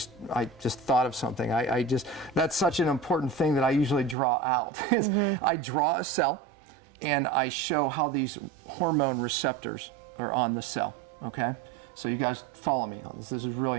thought of something. That's such an important thing that I usually draw out. Is I draw a cell and I show how these hormone receptors are on the cell, okay? So you guys follow me on this. This is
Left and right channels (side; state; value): left; drops out; at 4.2 s